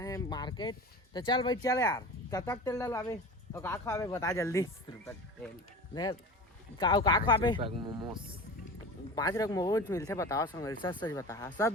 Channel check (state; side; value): normal; both; correlation 0.34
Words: मार्केट। तो चल भाई चल यार, कब तक तेल डलवाबे और का खावे बता जल्दी। का खावे मोमोस 5 रक मोमोज मिलते बताओ संगवारी, सच सच बता।